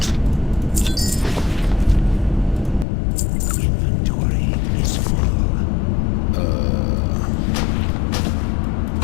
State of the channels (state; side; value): drops out; right; at 2.9 s